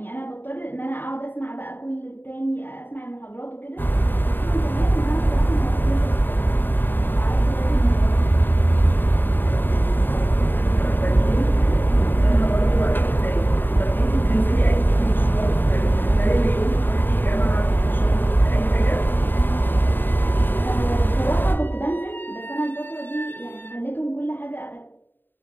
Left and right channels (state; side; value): late; right; 0.093 ms